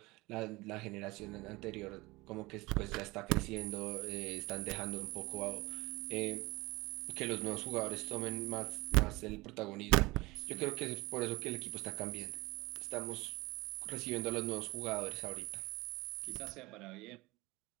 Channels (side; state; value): left; quieter; 22.0 dB